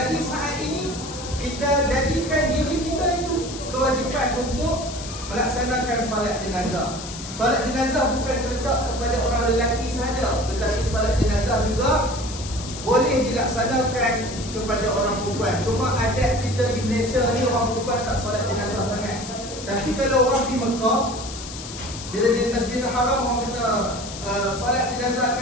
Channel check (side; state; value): left; noise; hiss, 11 dB below the sound